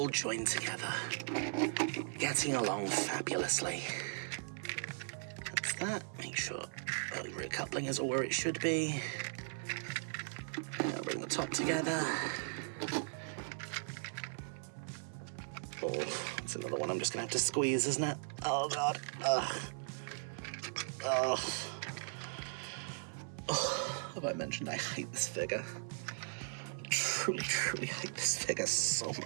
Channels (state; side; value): silent; left; 52 dB below the other